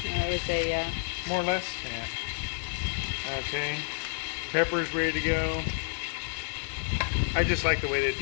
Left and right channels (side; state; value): right; silent; digital silence